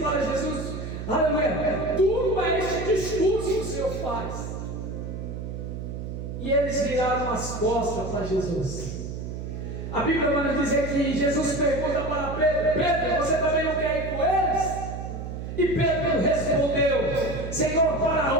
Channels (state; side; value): noise; right; hum, 7 dB below the sound